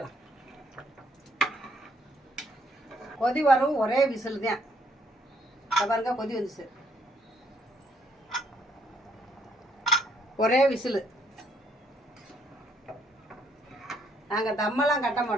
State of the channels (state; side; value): normal; both; correlation 0.69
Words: கொதி வரவும் ஒரே விசில் தான். பாருங்க கொதி வந்துச்சு, ஒரே விசில். நாங்கள் தம்மெல்லாம் கட்ட